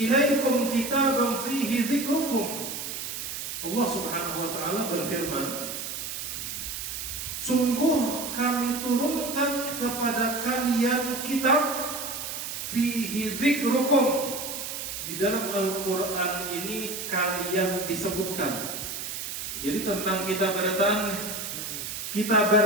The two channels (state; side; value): noise; right; hiss, 6 dB below the sound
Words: ilaikum kitaban fihi dzikrukum. Allah Subhanahu wa Ta'ala berfirman, sungguh kami turunkan kepada kalian kitab fihi dzikrukum. Di dalam Al-Quran ini kalian disebutkan. Jadi tentang kita